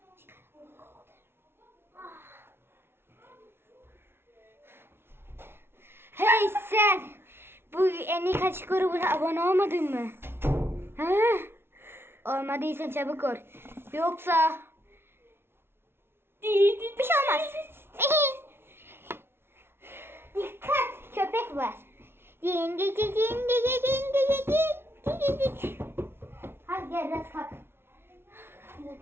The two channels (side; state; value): left; late; 0.11 ms